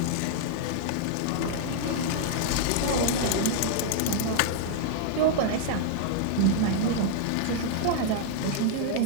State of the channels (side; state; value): both; different; correlation 0.00